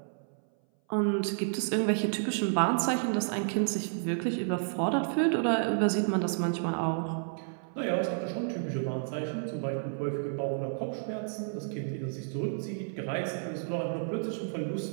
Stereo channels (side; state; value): left; silent; 57 dB below the other